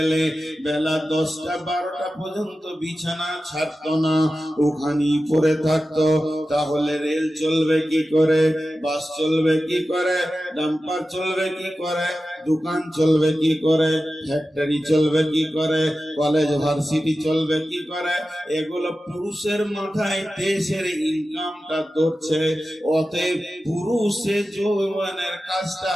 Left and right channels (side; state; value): both; normal; correlation 0.93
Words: বেলা 10টা 12টা পর্যন্ত বিছানা ছাড়তো না, ওখানেই পড়ে থাকতো। তাহলে রেল চলবে কি করে, বাস চলবে কি করে, ডাম্পার চলবে কি করে, দোকান চলবে কি করে, ফ্যাক্টরি চলবে কি করে, কলেজ ভার্সিটি চলবে কি করে? এগুলো পুরুষের মাথায় দেশের ইনকামটা ধরছে। অতএব পুরুষে যৌবনের কাজটা